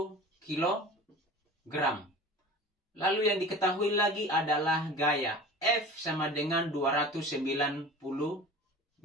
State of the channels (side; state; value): both; normal; correlation 0.39